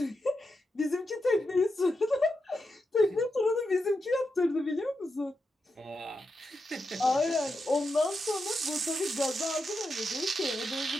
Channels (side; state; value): both; normal; correlation 0.86